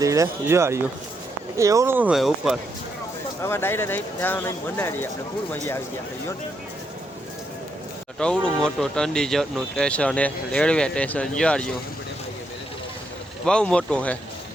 ધીરે જો આવ્યું એવું હોય ઉપર હવે ડાયરેક્ટ અહીં ત્યાં નહીં મનાડી આપણે ફૂલ મજા આવી ગયા છે ટવડું મોટું ચંડીગઢનું સ્ટેશન હે રેલવે સ્ટેશન જોડ્યું બહુ મોટું છે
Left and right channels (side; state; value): both; normal; correlation 0.79